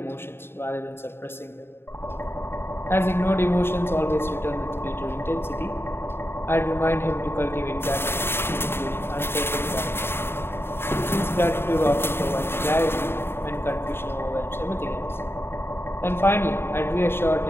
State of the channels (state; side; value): late; right; 0.11 ms